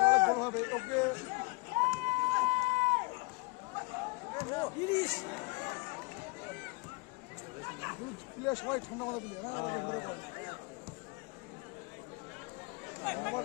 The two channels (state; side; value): quieter; right; 25.5 dB